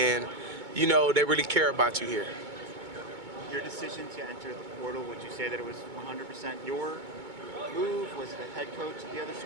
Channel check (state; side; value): late; left; 2.2 ms